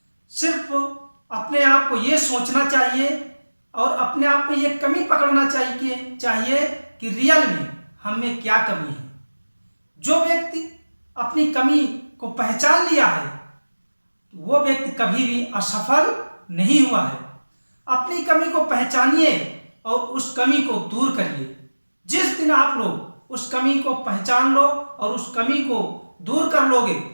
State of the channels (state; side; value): inverted; both; correlation -1.00